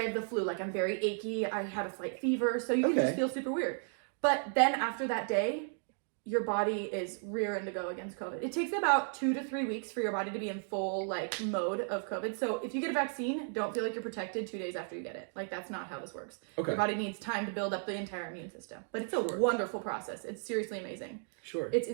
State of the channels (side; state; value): left; silent; 55 dB below the other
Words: have the flu. Like I'm very achy. I had a slight fever. So you can just feel super weird. But then after that day, your body is rearing to go against COVID. It takes about 2 to 3 weeks for your body to be in full like mode of COVID. So if you get a vaccine, don't feel like you're protected 2 days after you get it. Like that's not how this works. Okay. Your body needs time to build up the entire immune system. But it's a wonderful process. It's seriously amazing. Sure. It's